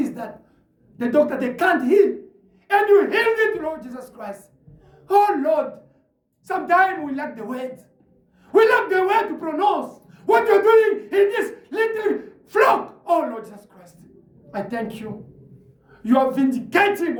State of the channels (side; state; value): both; identical; correlation 1.00